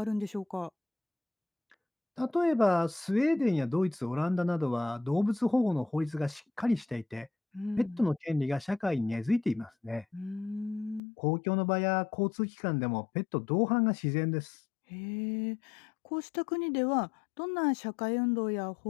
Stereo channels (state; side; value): drops out; right; at 11.0 s